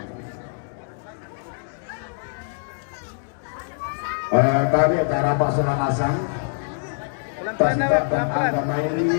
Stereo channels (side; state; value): right; silent; digital silence